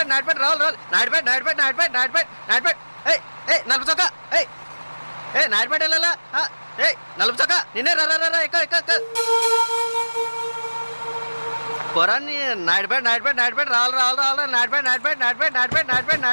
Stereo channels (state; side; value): inverted; both; correlation -1.00